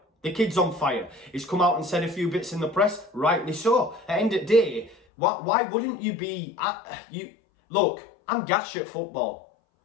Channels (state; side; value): drops out; right; at 5.0 s